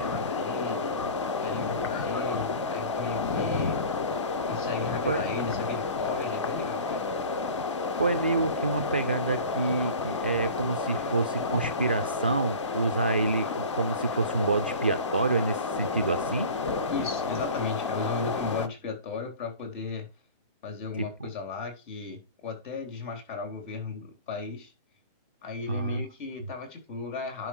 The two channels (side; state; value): both; inverted; correlation -0.38